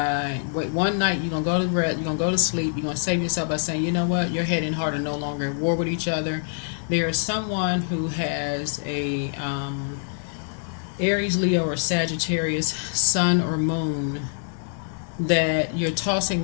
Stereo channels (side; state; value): right; silent; 61 dB below the other